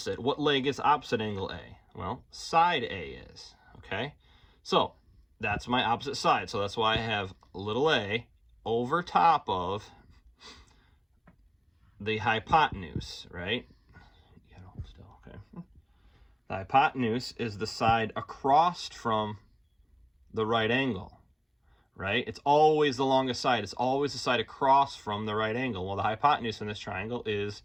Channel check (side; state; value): both; identical; correlation 1.00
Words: What leg is opposite angle A? Well, side A is, okay? So that's my opposite side. So that's why I have little a over top of the hypotenuse, right? Okay. The hypotenuse is the side across from the right angle, right? It's always the longest side. It's always the side across from the right angle. Well, the hypotenuse in this triangle is